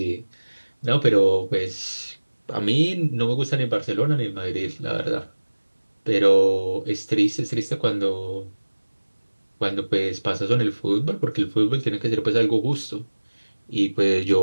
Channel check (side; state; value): both; inverted; correlation -1.00